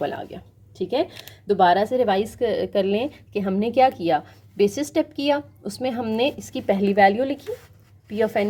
आ गया। ठीक है, दोबारा से रिवाइज कर लें कि हमने क्या किया। बेसिस स्टेप किया, उसमें हमने इसकी पहली वैल्यू लिखी, p ऑफ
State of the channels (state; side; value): identical; both; correlation 1.00